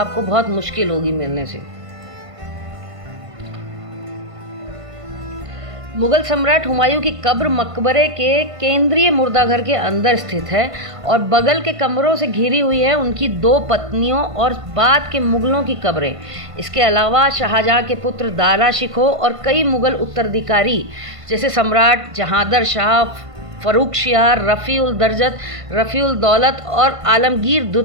बहुत मुश्किल होगी मिलने से। मुगल सम्राट हुमायूं की कब्र मकबरे के केंद्रीय मुर्दाघर के अंदर स्थित है और बगल के कमरों से घिरी हुई है उनकी 2 पत्नियों और बाद के मुगलों की कब्रें। इसके अलावा शाहजहां के पुत्र दारा शिकोह और कई मुगल उत्तराधिकारी जैसे सम्राट जहांदर शाह, फर्रुखशियार, रफ़ी-उल दरजत, रफ़ी-उल दौलत और आलमगीर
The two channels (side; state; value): left; late; 1.5 ms